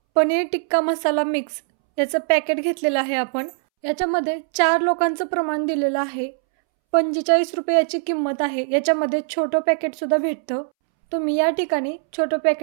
पनीर टिक्का मसाला मिक्स याचं पॅकेट घेतलेलं आहे आपण। याच्यामध्ये 4 लोकांचं प्रमाण दिलेलं आहे। 45 रुपये याची किंमत आहे। याच्यामध्ये छोटं पॅकेट सुद्धा भेटतं, तुम्ही या ठिकाणी छोटं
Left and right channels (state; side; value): silent; left; 65 dB below the other